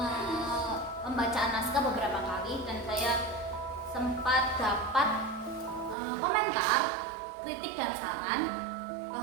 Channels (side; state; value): left; drops out; at 6.0 s